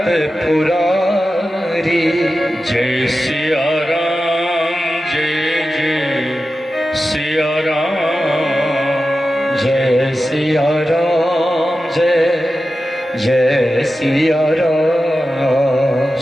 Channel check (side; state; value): both; normal; correlation 0.93